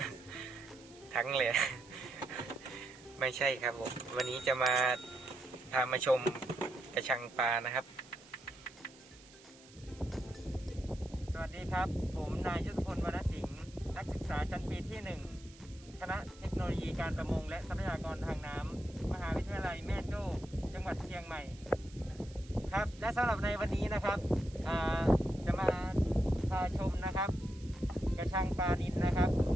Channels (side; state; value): right; noise; hiss, 22 dB below the sound